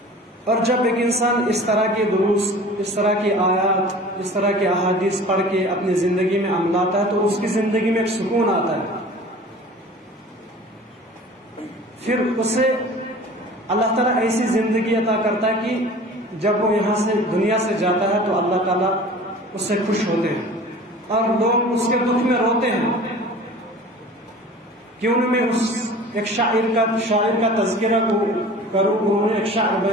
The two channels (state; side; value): normal; both; correlation 0.42